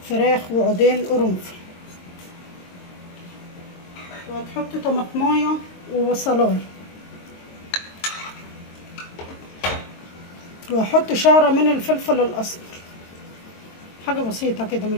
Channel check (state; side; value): late; right; 22 ms